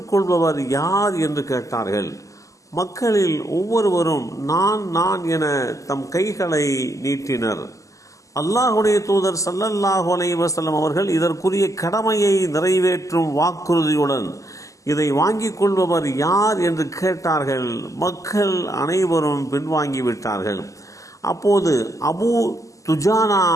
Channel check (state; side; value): late; right; 0.16 ms